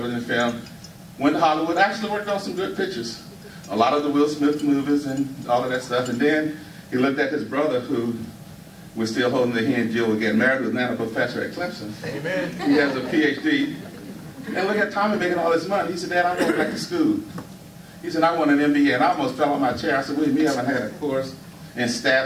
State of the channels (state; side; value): identical; both; correlation 1.00